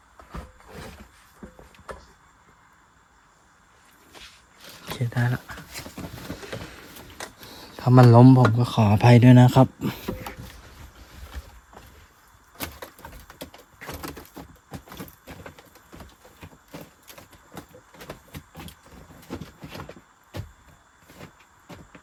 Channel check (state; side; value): identical; both; correlation 1.00